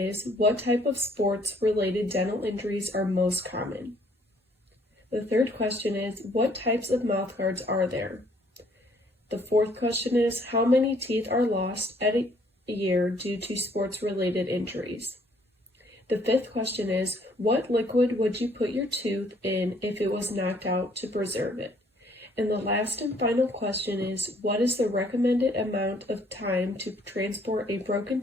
what type of sports-related dental injuries are most common? The third question is, what types of mouthguards are there? The fourth question is, how many teeth are lost at a year due to sports-related injuries? The fifth question is, what liquid would you put your tooth in if it was knocked out to preserve it? And the last and final question is, what is the recommended amount of time to transport a broken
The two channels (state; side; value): normal; both; correlation 0.63